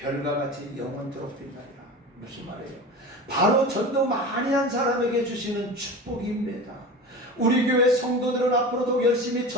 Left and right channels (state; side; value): normal; both; correlation 0.32